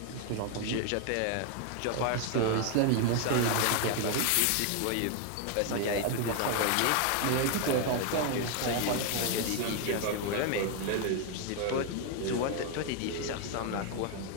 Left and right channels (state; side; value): different; both; correlation 0.00